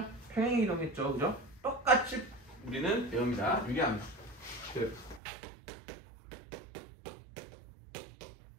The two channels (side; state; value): left; drops out; at 5.2 s